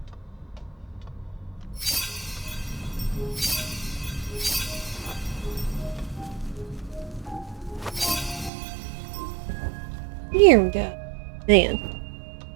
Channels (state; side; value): drops out; left; at 8.5 s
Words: Here we go. Man.